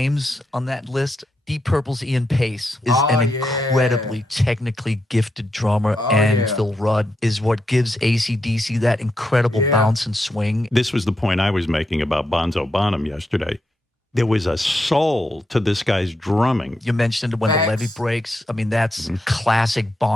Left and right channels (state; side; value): normal; both; correlation 0.83